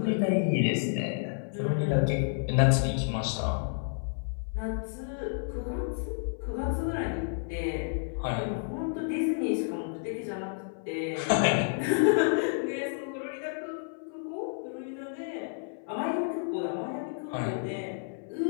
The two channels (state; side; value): silent; right; 58 dB below the other